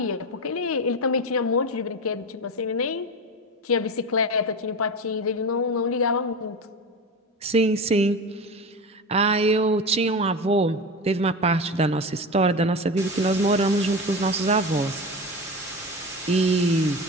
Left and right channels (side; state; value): both; normal; correlation 0.25